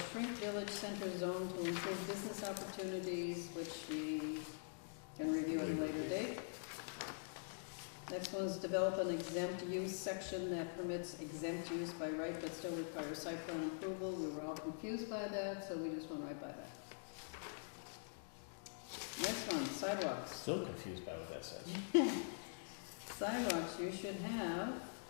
shrink village center zone to improve business opportunities, which we can review at a later date. Next one is develop an exempt use section that permits exempt use by right but still requires site plan approval. We were all confused by that, so we just went right by that. Next one, sidewalks. Still confused by what that says. Sidewalks, you should have,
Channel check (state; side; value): silent; right; digital silence